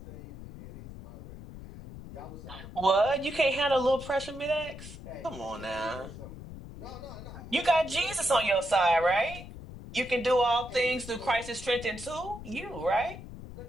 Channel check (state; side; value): noise; left; rumble, 13 dB below the sound